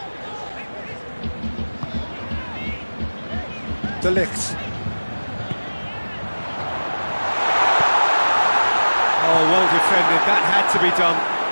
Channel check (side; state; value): both; inverted; correlation -1.00